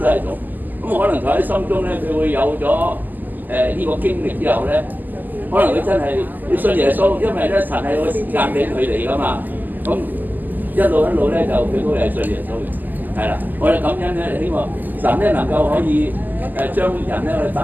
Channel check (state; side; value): late; left; 0.085 ms